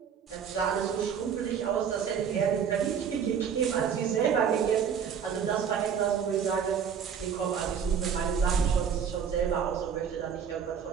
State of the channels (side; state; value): left; quieter; 7.4 dB